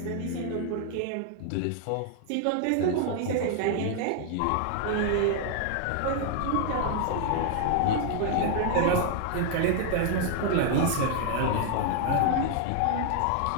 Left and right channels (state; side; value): different; both; correlation 0.00